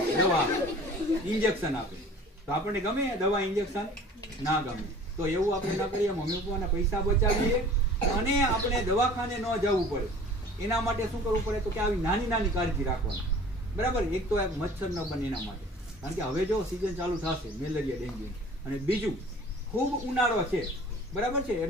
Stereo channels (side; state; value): both; normal; correlation 0.46